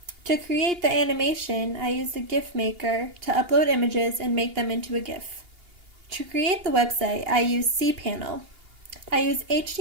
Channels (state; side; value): late; left; 2.8 ms